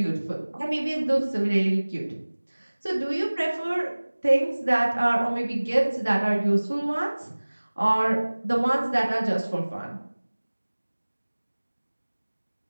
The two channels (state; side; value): inverted; both; correlation -1.00